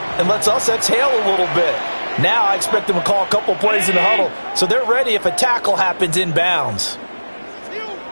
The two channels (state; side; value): inverted; both; correlation -1.00